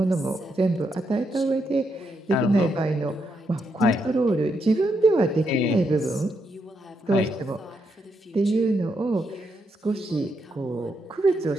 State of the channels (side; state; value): both; normal; correlation 0.80